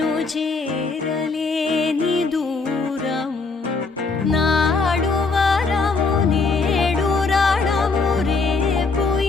చేరలేని దూరము నాడు వరము నేడు రణము రేపు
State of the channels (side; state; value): right; quieter; 4.1 dB